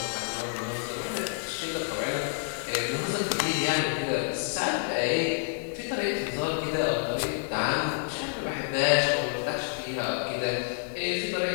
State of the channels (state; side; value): silent; right; digital silence